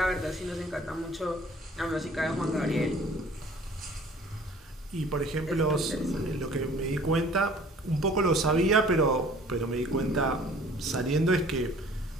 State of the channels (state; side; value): normal; both; correlation 0.51